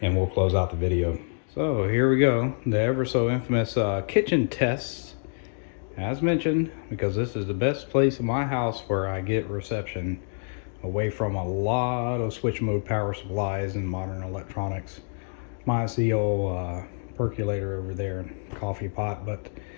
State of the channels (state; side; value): silent; right; digital silence